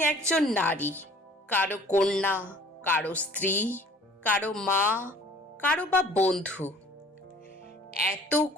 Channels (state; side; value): normal; both; correlation 0.52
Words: একজন নারী, কারো কন্যা, কারো স্ত্রী, কারো মা, কারো বা বন্ধু।